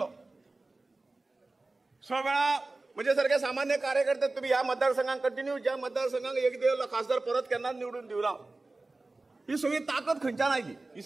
6 वेळा म्हणजे सारखे सामान्य कार्यकर्ते तुम्ही या मतदारसंघात कंटिन्यू ज्या मतदारसंघाक एक देव खासदार परत केन्नाच निवडून दिवना. ही सगळी ताकद खंयच्यान आयली? ही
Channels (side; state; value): left; quieter; 3.2 dB